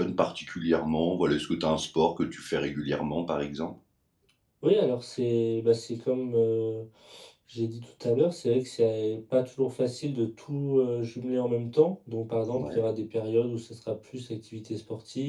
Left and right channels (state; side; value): identical; both; correlation 1.00